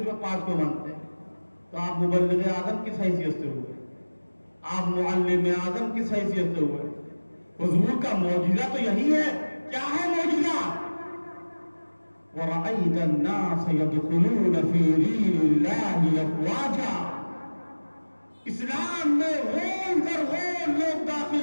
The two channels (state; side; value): inverted; both; correlation -1.00